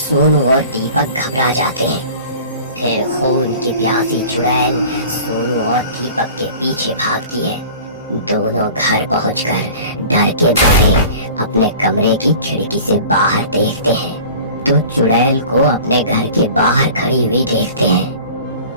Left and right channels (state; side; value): inverted; both; correlation -0.42